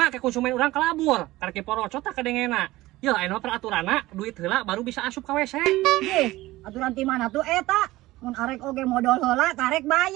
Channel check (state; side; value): quieter; left; 18.0 dB